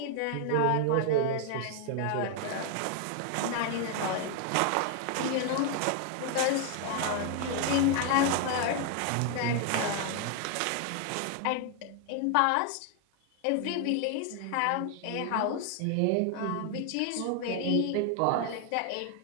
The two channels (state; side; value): different; both; correlation 0.00